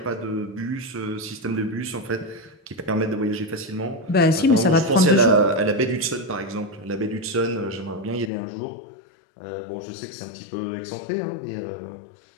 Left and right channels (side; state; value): right; drops out; at 8.3 s